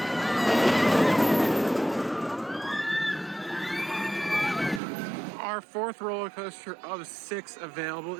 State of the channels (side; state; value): left; drops out; at 4.8 s